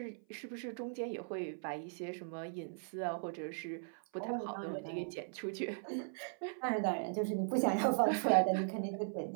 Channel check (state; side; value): silent; left; 52 dB below the other